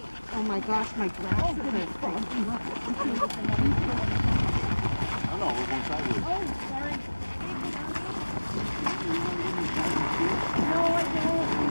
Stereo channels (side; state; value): both; inverted; correlation -1.00